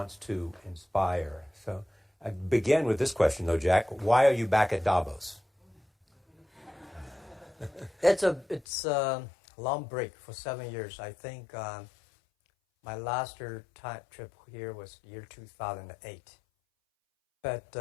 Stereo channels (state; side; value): drops out; right; at 8.7 s